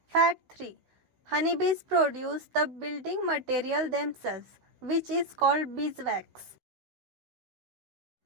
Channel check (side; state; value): left; late; 16 ms